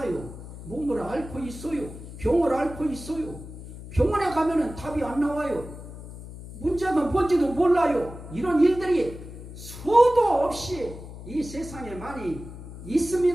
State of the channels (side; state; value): left; noise; hum, 13 dB below the sound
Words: 몸을 앓고 있어요. 병을 앓고 있어요. 병원에 가면은 답이 안 나와요. 문제가 뭔지도 몰라요. 이런 일들이 수도 없이 이 세상에 많이